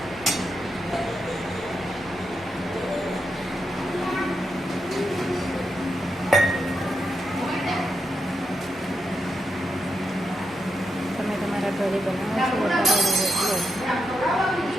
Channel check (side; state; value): both; normal; correlation 0.85